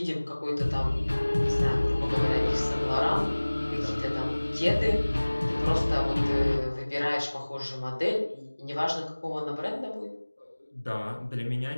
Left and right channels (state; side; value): inverted; both; correlation -1.00